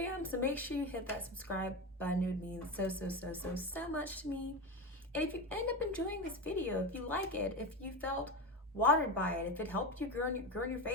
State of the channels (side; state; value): both; normal; correlation 0.20